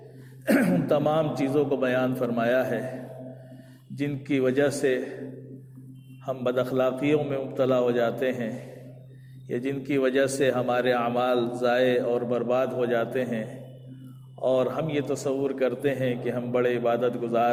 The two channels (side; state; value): both; identical; correlation 1.00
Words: ان تمام چیزوں کو بیان فرمایا ہے جن کی وجہ سے ہم بد اخلاقیوں میں مبتلا ہو جاتے ہیں، یا جن کی وجہ سے ہمارے اعمال ضائع اور برباد ہو جاتے ہیں، اور ہم یہ تصور کرتے ہیں کہ ہم بڑے عبادت